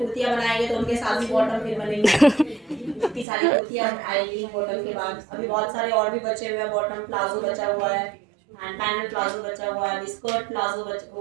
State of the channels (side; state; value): left; drops out; at 3.2 s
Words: बनाएंगे तो उनके साथ भी बॉटम फिर बनेंगे। इतनी सारी कुर्तियाँ आएंगी बॉटम के बाद। अभी बहुत सारे और भी बचे हुए हैं, बॉटम प्लाजो बचा हुआ है, एंड पैनल प्लाजो बचा हुआ है, स्कर्ट प्लाजो